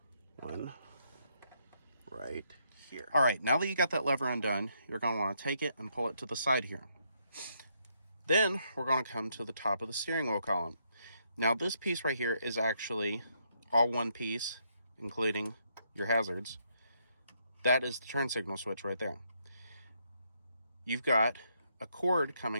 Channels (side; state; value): both; inverted; correlation -0.75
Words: one right here. All right, now that you got that lever undone, you're going to want to take it and pull it to the side here. Then we're going to come to the top of the steering wheel column. Now this piece right here is actually all one piece, including your hazards. That is the turn signal switch right there. You've got a cord